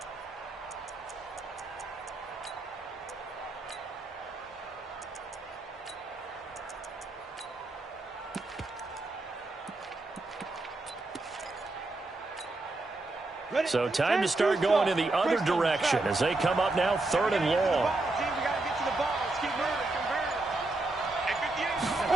So time to start going in the other direction as they come up now 3rd and long.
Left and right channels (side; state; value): left; quieter; 3.0 dB